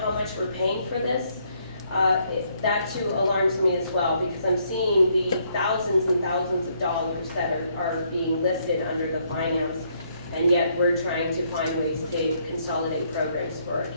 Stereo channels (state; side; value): inverted; both; correlation -0.71